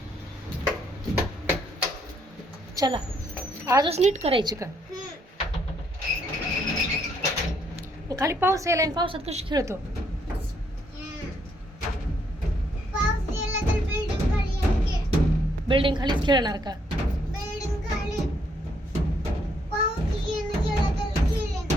चला आजच नीट करायची का? खाली पाऊस यायला आणि पावसात कशी खेळतो? बिल्डिंग खालीच खेळणार का?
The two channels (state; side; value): normal; both; correlation 0.72